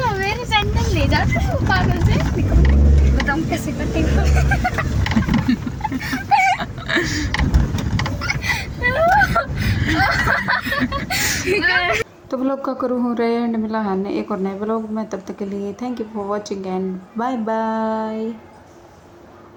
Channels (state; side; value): identical; both; correlation 1.00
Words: मेरी सैंडल ले जाते हो पागल से। बताऊँ कैसे करती हूँ। तो व्लॉग का करूँ हो रहे एंड मिला है एक और नए व्लॉग में, तब तक के लिए thank you for watching and bye bye.